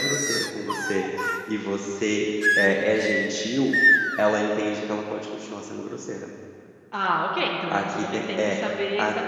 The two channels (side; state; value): both; identical; correlation 1.00